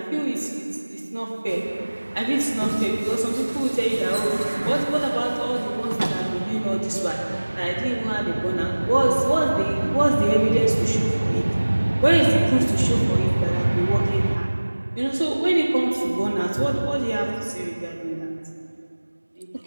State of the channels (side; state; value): both; inverted; correlation -1.00